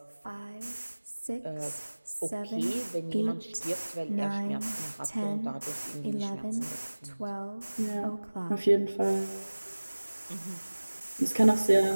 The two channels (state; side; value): inverted; both; correlation -1.00